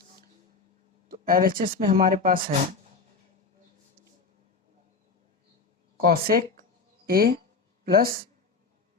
तो LHS में हमारे पास है cosec a plus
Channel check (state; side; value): quieter; right; 4.5 dB